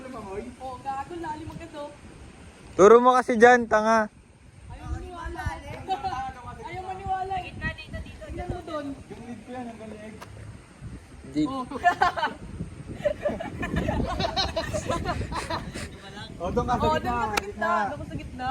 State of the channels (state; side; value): identical; both; correlation 1.00